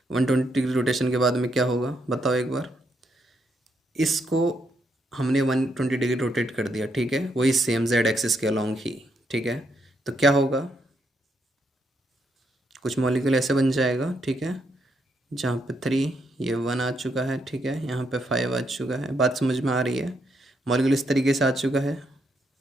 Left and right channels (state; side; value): normal; both; correlation 0.77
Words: 120 डिग्री रोटेशन के बाद में क्या होगा बताओ एक बार। इसको हमने 120 डिग्री रोटेट कर दिया, ठीक है, वही सेम जेड एक्सिस के अलॉन्ग ही, ठीक है। तो क्या होगा, कुछ मॉलिक्यूल ऐसे बन जाएगा, ठीक है, जहाँ पे 3, ये 1 आ चुका है, ठीक है, यहाँ पे 5 आ चुका है। बात समझ में आ रही है, मॉलिक्यूल इस तरीके से आ चुका है,